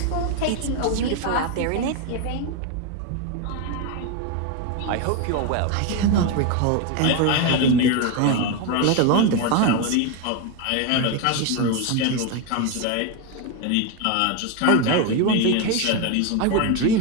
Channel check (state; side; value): different; both; correlation 0.02